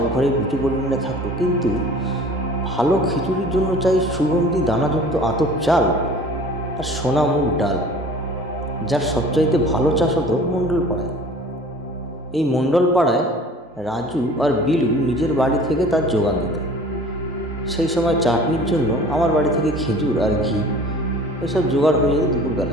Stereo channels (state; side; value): normal; both; correlation 0.45